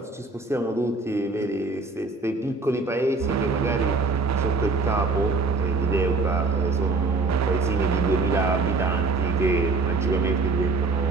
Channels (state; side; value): quieter; left; 3.7 dB